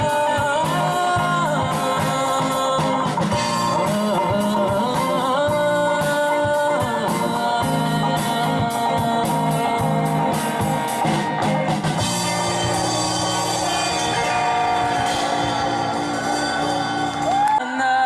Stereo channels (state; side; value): identical; both; correlation 1.00